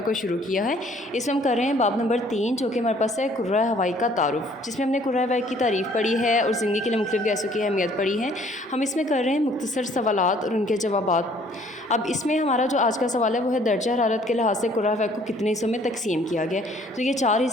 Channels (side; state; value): both; normal; correlation 0.59